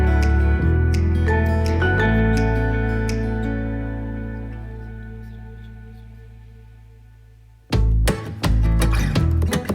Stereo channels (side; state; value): both; identical; correlation 1.00